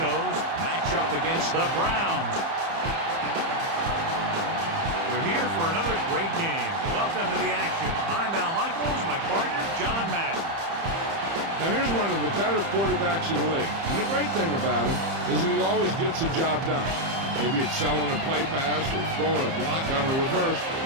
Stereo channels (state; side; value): late; left; 30 ms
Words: match up against the Browns. We're here for another great game. Welcome to the action. I'm Al Michaels, my partner, John Madden. Now here's one of the better quarterbacks in the league. And the great thing about him is that he always gets the job done. Maybe it's selling a play pass or throwing a block on a reverse.